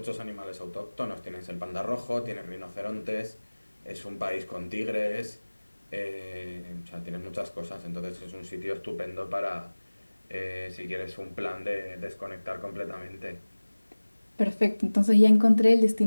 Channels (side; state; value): both; inverted; correlation -1.00